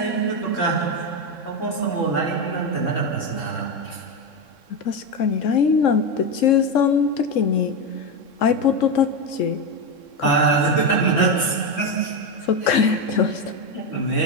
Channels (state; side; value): late; right; 3.7 ms